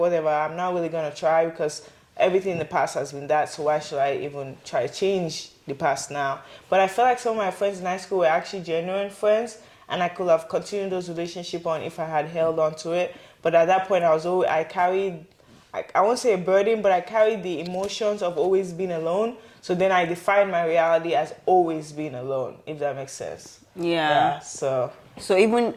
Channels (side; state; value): both; identical; correlation 1.00